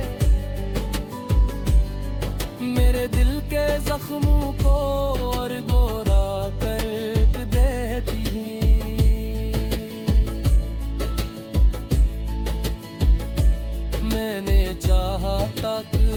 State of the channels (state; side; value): identical; both; correlation 1.00